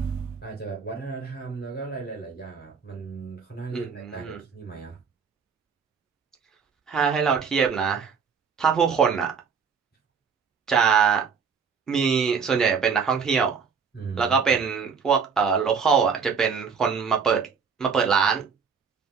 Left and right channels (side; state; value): left; quieter; 6.2 dB